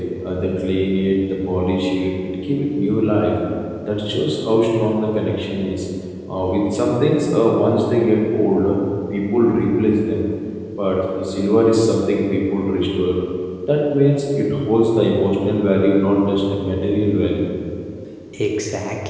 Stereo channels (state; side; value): identical; both; correlation 1.00